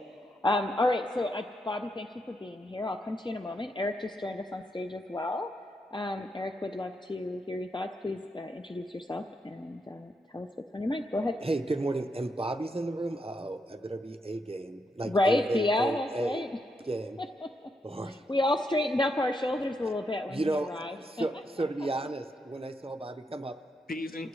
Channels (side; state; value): both; normal; correlation 0.80